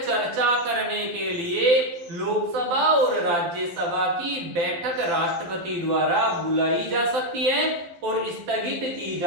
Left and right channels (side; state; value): left; late; 12 ms